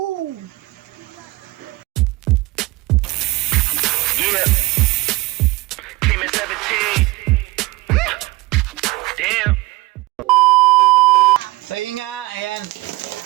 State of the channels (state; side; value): quieter; left; 21.7 dB